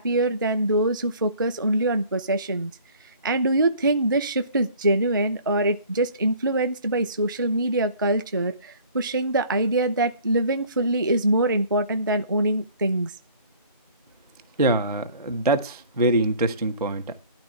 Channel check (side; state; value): both; inverted; correlation -0.51